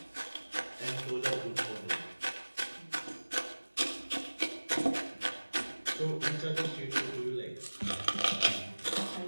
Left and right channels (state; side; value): inverted; both; correlation -1.00